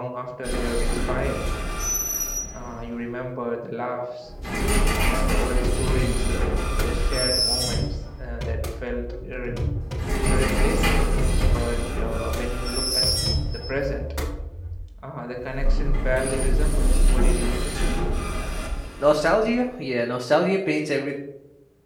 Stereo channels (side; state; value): both; identical; correlation 1.00